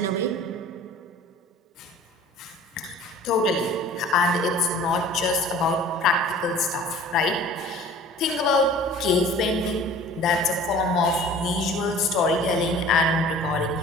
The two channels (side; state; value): both; normal; correlation 0.46